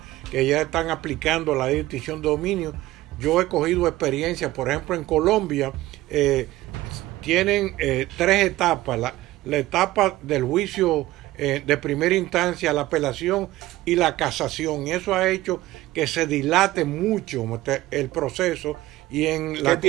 que ya están aplicando la ley de extinción de dominio. Yo he cogido experiencia, por ejemplo, en Colombia tienen 3 etapas: la etapa del juicio de primera instancia, la apelación y la casación. Y eso ha hecho que se dilate mucho el proceso. ¿Qué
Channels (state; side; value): quieter; left; 16.9 dB